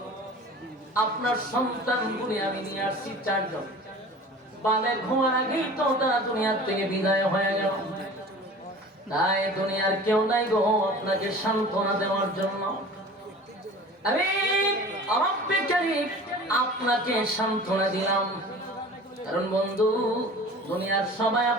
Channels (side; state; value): both; normal; correlation 0.41